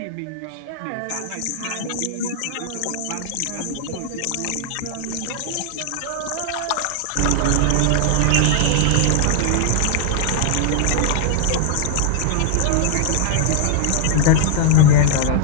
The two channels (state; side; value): different; both; correlation 0.00